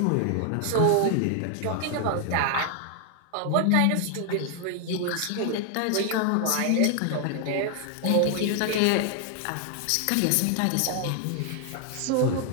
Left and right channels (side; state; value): both; different; correlation 0.00